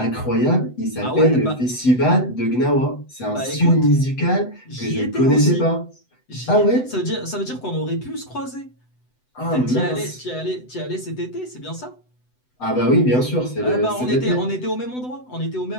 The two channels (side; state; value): right; late; 7.9 ms